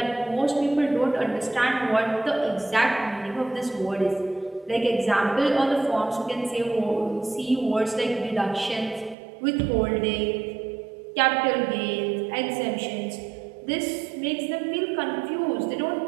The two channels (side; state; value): left; drops out; at 9.2 s